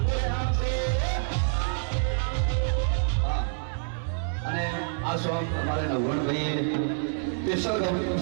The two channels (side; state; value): left; silent; 60 dB below the other